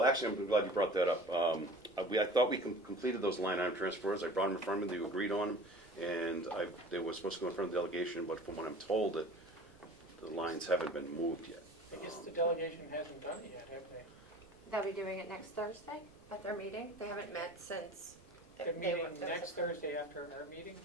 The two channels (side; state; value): right; noise; rumble, 26 dB below the sound